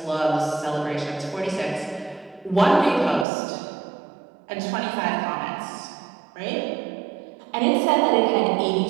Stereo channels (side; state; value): left; drops out; at 3.2 s